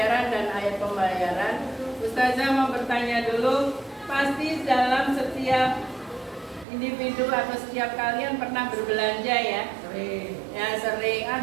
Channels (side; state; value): left; drops out; at 6.7 s